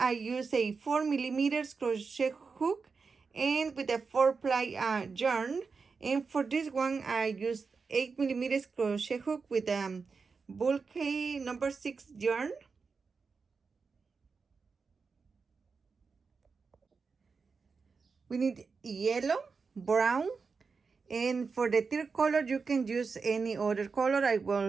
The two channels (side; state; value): left; quieter; 4.9 dB